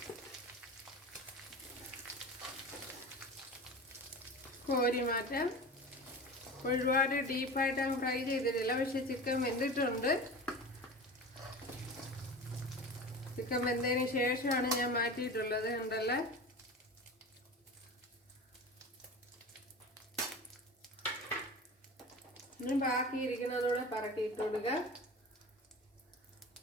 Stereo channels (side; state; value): both; normal; correlation 0.33